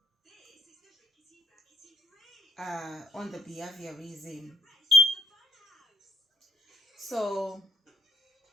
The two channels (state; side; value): normal; both; correlation 0.62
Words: on the behaviorism. So